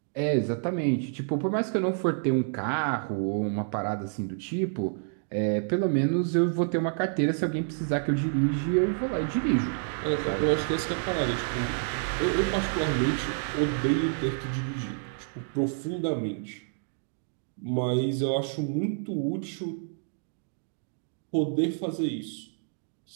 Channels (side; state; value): left; silent; digital silence